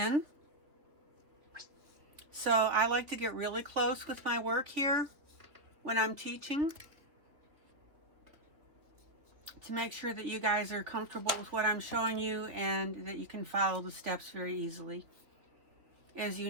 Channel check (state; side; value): late; left; 3.0 ms